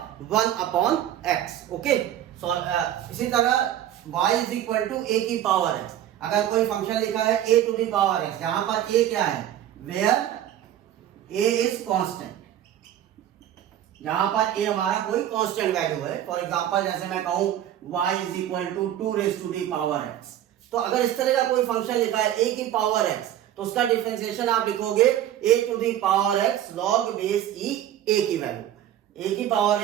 1 अपॉन x। ओके, सो इसी तरह y is equal to a की पावर x। अगर कोई फंक्शन लिखा है a to the power x, जहां पर a क्या है, वेयर a इज कांस्टेंट, जहां पर a हमारा कोई कांस्टेंट वैल्यू है। फॉर एग्जांपल जैसे मैं कहूं y is equal to 2 raise to the power x, तो अगर इस तरह का कोई फंक्शन लिखा है a की पावर x, तो उसका डिफरेंशिएशन आप लिखोगे a to the power x log base e a की वैल्यू, a की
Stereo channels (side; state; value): left; quieter; 11.7 dB